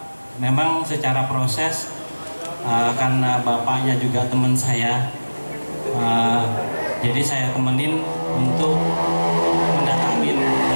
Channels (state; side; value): inverted; both; correlation -1.00